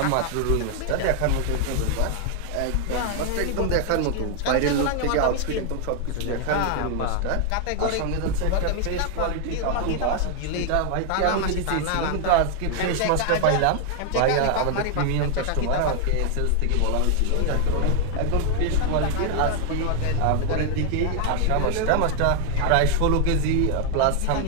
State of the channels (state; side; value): different; both; correlation 0.00